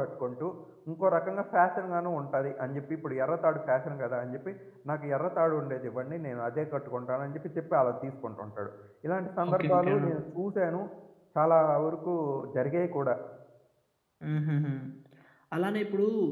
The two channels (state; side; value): identical; both; correlation 1.00